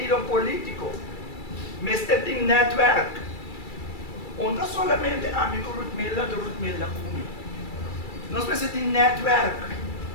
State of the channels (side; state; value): right; late; 2.3 ms